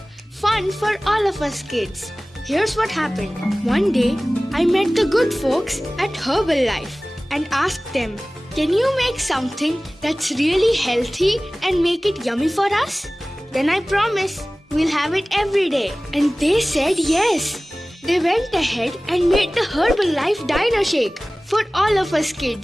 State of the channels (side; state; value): both; normal; correlation 0.98